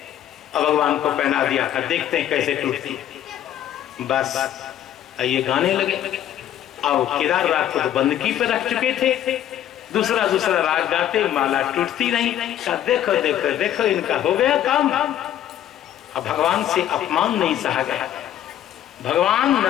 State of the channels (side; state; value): right; quieter; 11.4 dB